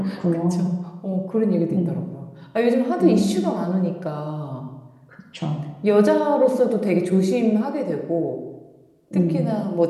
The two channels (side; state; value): both; identical; correlation 1.00